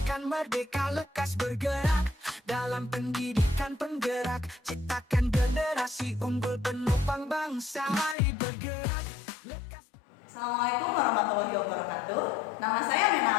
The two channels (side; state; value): right; drops out; at 8.2 s